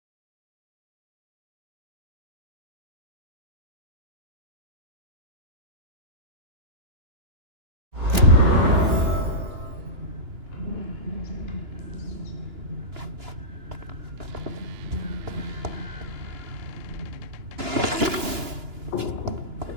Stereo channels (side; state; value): left; late; 2.9 ms